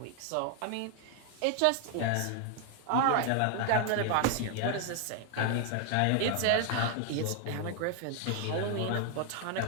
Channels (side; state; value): both; different; correlation 0.00